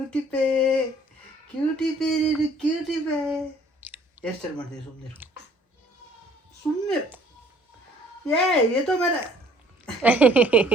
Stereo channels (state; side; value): normal; both; correlation 0.58